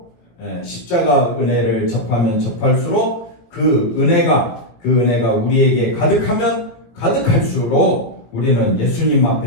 십자가 은혜를 접하면 접할수록 그 은혜가 우리에게 가득하면 가득할수록 우리는 예수님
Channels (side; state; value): right; late; 18 ms